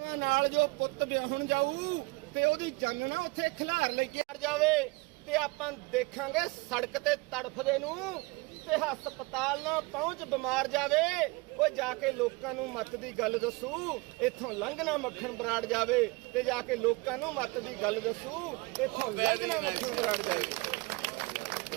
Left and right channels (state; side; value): quieter; left; 25.6 dB